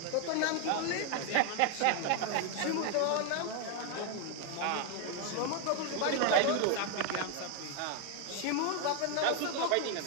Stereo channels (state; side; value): different; both; correlation 0.01